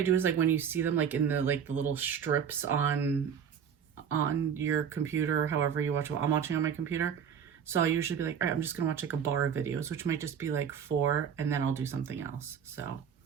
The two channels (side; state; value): left; quieter; 7.8 dB